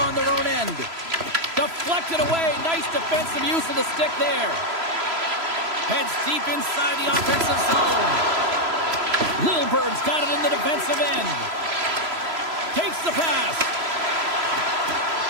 on their own end. Deflected away. Nice defensive use of the stick there. Heads deep inside the offensive zone. Lilburn's got it in the defensive end. Takes the pass.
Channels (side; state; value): left; late; 3.0 ms